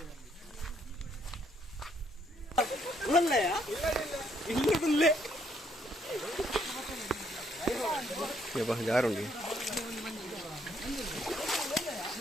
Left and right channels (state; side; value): normal; both; correlation 0.70